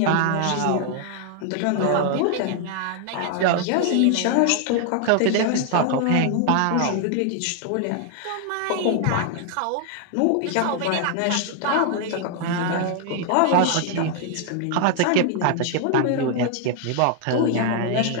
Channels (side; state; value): both; different; correlation 0.00